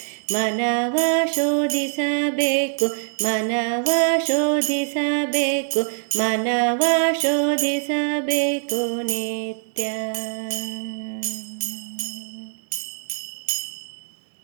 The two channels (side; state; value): left; silent; digital silence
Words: ಮನವ ಶೋಧಿಸಬೇಕು, ಮನವ ಶೋಧಿಸಬೇಕು, ಮನವ ಶೋಧಿಸಬೇಕು ನಿತ್ಯ.